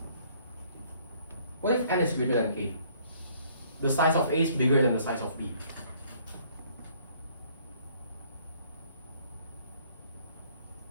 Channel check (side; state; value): both; inverted; correlation -0.61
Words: n is greater than k? The size of A is bigger than the size of B.